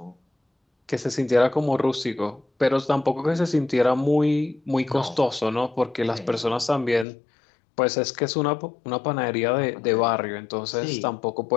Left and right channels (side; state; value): right; drops out; at 7.1 s